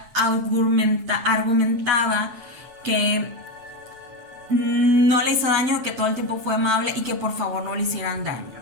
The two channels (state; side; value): late; left; 8.2 ms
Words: argumentaba que no le hizo daño, que todo el tiempo fue amable y que por favor no le hicieran